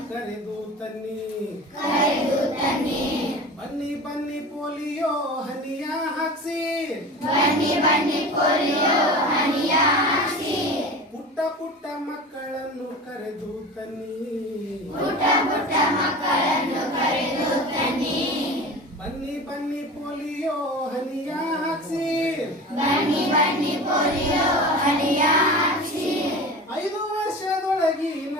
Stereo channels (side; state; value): both; normal; correlation 0.34